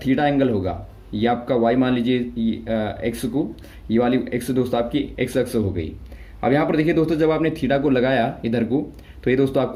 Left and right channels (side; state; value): both; identical; correlation 1.00